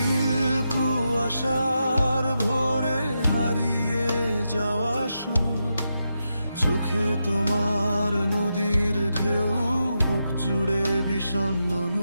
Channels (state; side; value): inverted; both; correlation -0.86